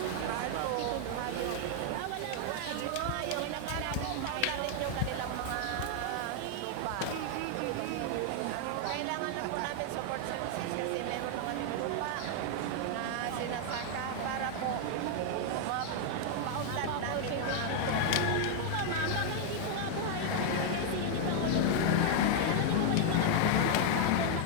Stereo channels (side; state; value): both; different; correlation 0.00